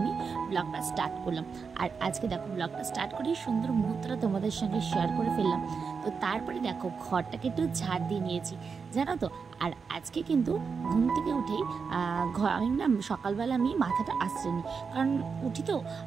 ব্লগটা স্টার্ট করলাম। আর আজকে দেখো ব্লগটা স্টার্ট করে সুন্দর মুহূর্তটা তোমাদের সঙ্গে শেয়ার করে ফেললাম। তো তারপরে দেখো ঘরটাকে একটু ঝাড় দিয়ে নিয়েছি, জানো তো। আর আজকে কিন্তু ঘুম থেকে উঠেই আমি না সকালবেলা আমি মাথাটা আঁচড়ে, কারণ উঠি তো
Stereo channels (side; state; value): left; quieter; 5.5 dB